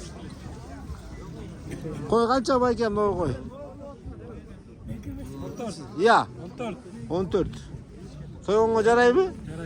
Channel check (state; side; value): identical; both; correlation 1.00